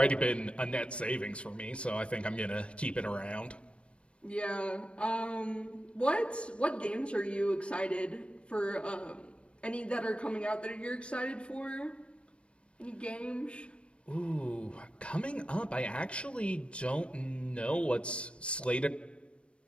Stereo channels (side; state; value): right; late; 0.059 ms